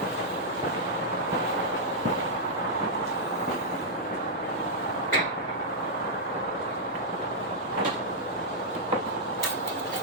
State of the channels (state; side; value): normal; both; correlation -0.07